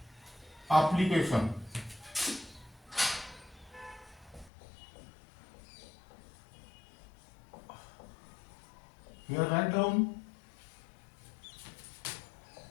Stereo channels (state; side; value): drops out; right; at 4.5 s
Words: application. Here write down